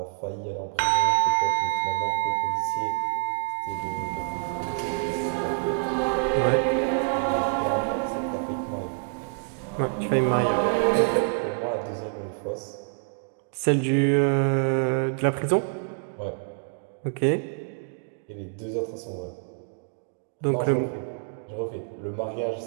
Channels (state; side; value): silent; left; digital silence